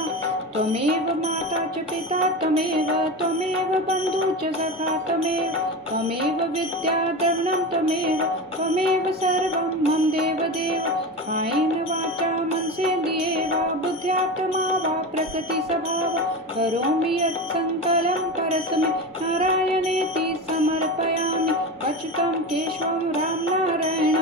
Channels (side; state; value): both; normal; correlation 0.24